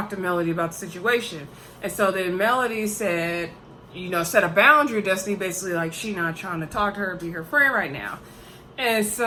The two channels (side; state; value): both; identical; correlation 1.00